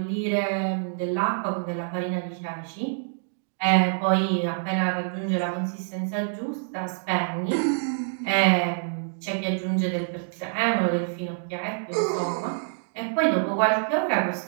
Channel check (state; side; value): silent; left; digital silence